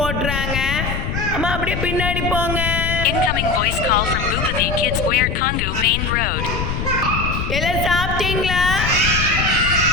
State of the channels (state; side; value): noise; left; rumble, 3 dB below the sound